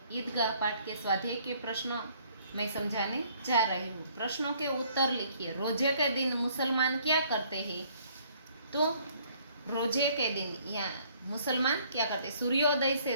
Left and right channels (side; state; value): both; inverted; correlation -0.61